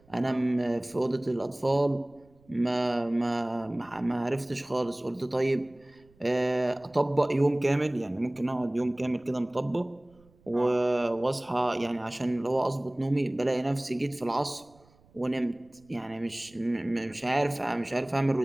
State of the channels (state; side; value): noise; right; rumble, 30 dB below the sound